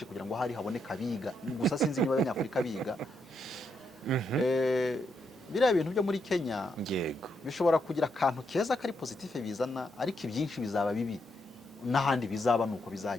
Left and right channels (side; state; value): both; normal; correlation 0.80